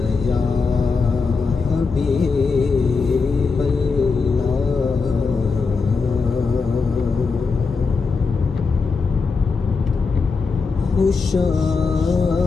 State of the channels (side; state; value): right; quieter; 4.7 dB